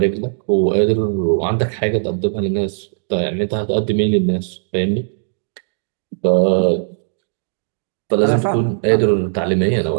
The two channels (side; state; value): left; silent; digital silence